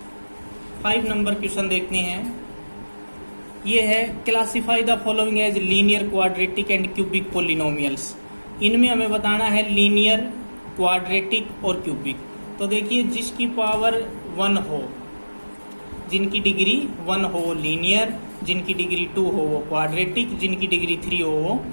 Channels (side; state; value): both; inverted; correlation -1.00